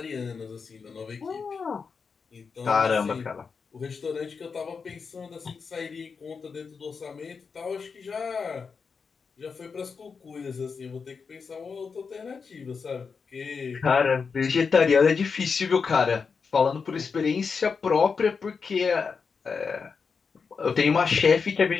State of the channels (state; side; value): quieter; right; 5.4 dB